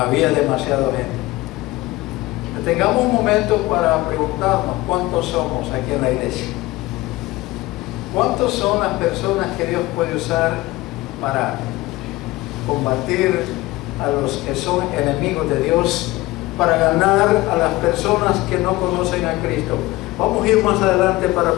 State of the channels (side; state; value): right; quieter; 19.2 dB